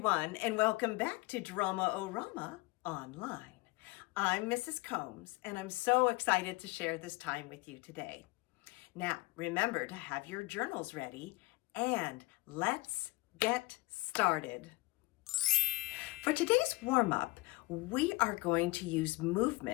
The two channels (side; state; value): right; quieter; 23.3 dB